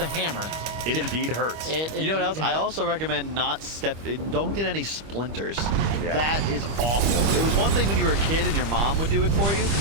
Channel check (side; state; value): left; late; 25 ms